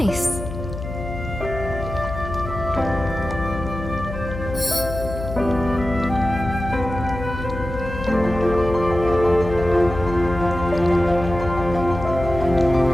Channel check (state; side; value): noise; left; hum, 8 dB below the sound